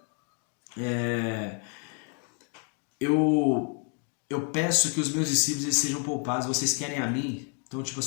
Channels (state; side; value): quieter; right; 35.1 dB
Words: eu peço que os meus discípulos eles sejam poupados, vocês querem a mim? Então, tipo